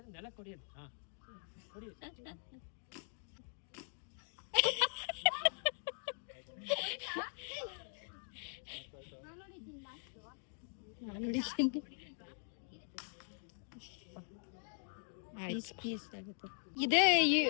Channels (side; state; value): right; silent; 50 dB below the other